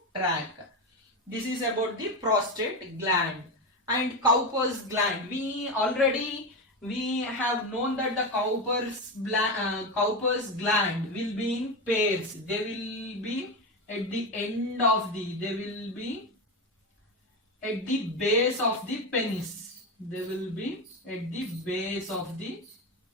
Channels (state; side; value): normal; both; correlation 0.16